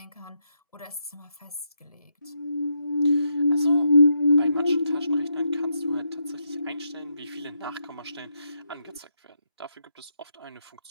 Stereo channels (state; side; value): inverted; both; correlation -0.81